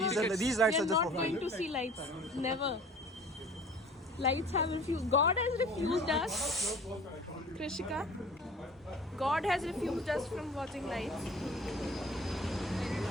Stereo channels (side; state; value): both; normal; correlation 0.46